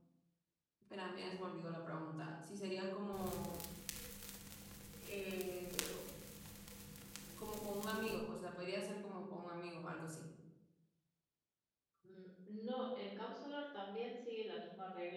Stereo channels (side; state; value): both; identical; correlation 1.00